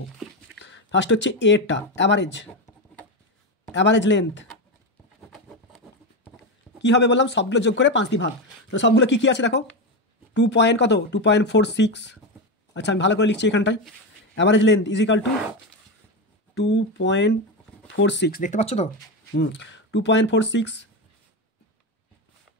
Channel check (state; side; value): normal; both; correlation 0.14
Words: ফার্স্ট হচ্ছে এটা অ্যাভারেজ, অ্যাভারেজ লেন্থ কী হবে বললাম, সবগুলো যোগ করে 5 দিয়ে ভাগ। তো সবগুলো কী কী আছে দেখো, 2 পয়েন্ট কত 2.46। আচ্ছা আমি ভালো করে লিখছি এখানটায়, average length is equal two 2.46, দেখতে পাচ্ছ তো? 2.46,